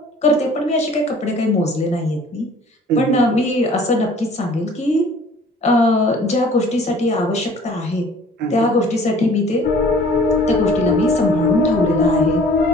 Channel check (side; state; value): both; normal; correlation 0.51